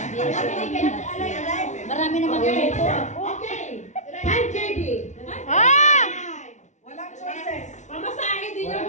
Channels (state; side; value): late; right; 0.35 ms